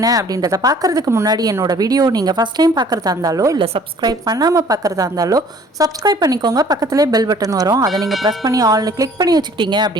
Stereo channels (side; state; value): both; normal; correlation 0.54